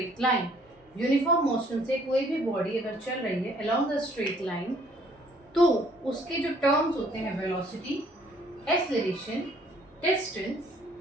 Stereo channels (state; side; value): normal; both; correlation 0.61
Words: line, uniform motion से कोई भी बॉडी अगर चल रही है अलोंग द स्ट्रेट लाइन, तो उसके जो टर्म्स होते हैं velocity, acceleration, distance